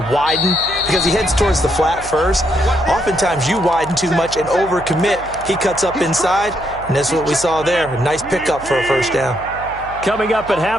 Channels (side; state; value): right; noise; hum, 16 dB below the sound